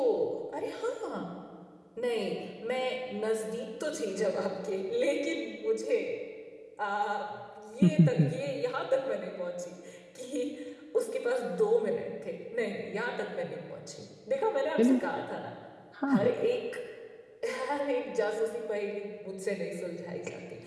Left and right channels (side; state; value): both; identical; correlation 1.00